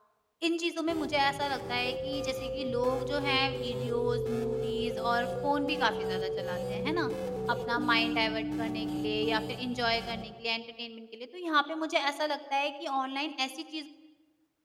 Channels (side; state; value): both; identical; correlation 1.00